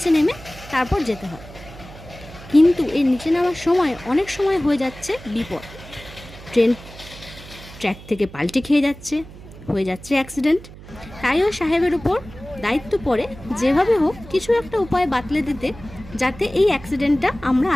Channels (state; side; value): noise; right; hum, 17 dB below the sound